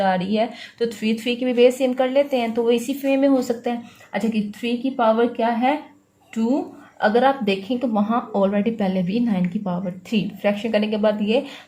आ रही है तो 3 3 की भी बेस सेम कर लेते हैं, तो वो इसी वे में हो सकता है। अच्छा कि 3 की पावर क्या है 2, अगर आप देखें तो वहाँ ऑलरेडी पहले भी 9 की पावर 3 फ्रैक्शन करने के बाद ये,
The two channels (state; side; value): identical; both; correlation 1.00